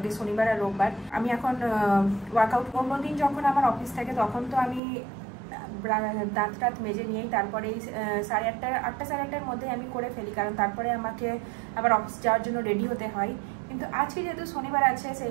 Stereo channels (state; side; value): drops out; left; at 4.8 s